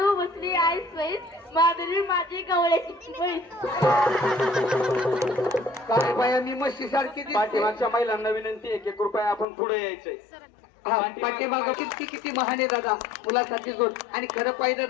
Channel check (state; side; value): drops out; right; at 9.5 s